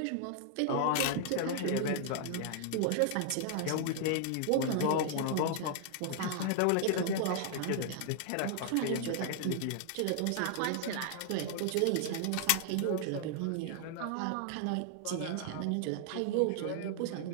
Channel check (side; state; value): both; different; correlation 0.00